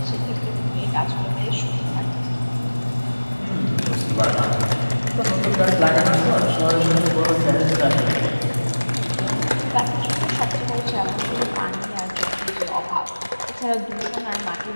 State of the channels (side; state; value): both; inverted; correlation -1.00